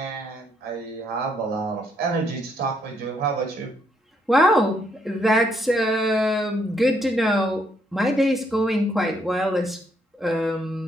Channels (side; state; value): both; normal; correlation 0.72